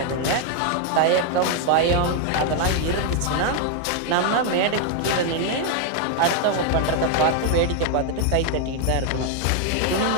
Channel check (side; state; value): both; different; correlation 0.00